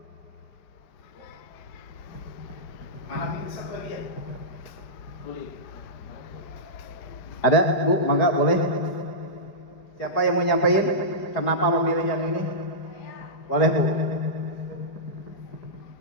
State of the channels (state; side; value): late; right; 5.0 ms